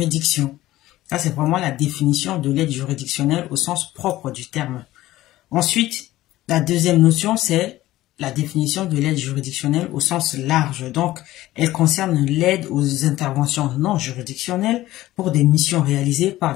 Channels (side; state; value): right; quieter; 16.0 dB